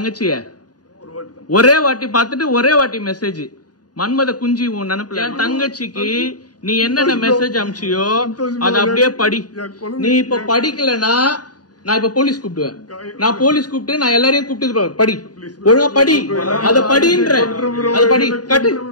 ஒரு வாட்டி தான். ஒரே வாட்டி பாத்துட்டு ஒரே வாட்டி மெசேஜ் மன்மத குஞ்சி உன் நினைப்புல என் தங்கச்சிக்கு நீ என்னென்ன மெசேஜ் அனுப்பிச்சியோ அத அப்படியே படி நீ இப்ப படிக்கலனா நான் இப்ப போலீஸ் கூப்பிடுவேன் நான் போலீஸ் கூப்பிட்டு நான் எல்லாரையும் கூப்பிட்டு படி ஒழுங்கா படி அத படின்ற அத படி கட்டு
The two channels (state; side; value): late; right; 0.69 ms